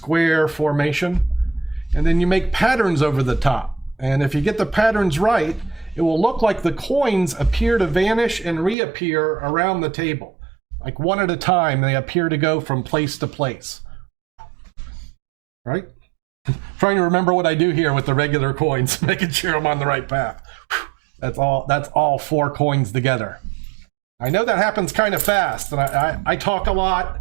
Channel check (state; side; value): drops out; left; at 8.8 s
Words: formation. And then you make patterns over the top. And if you get the patterns right, it will look like the coins appear to vanish and reappear around the table. Like one at a time, they appear to go from place to place. Right? Trying to remember what I do here with the regular coins, making sure I'm on the right path. That's all 4 coins together. I know that happens kind of fast, and I talk a lot,